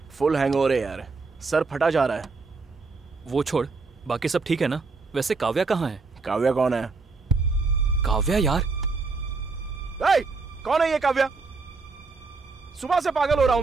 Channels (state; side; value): quieter; left; 4.2 dB